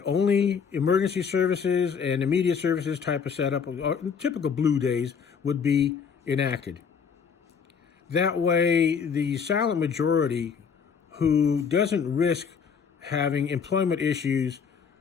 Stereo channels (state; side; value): quieter; right; 6.4 dB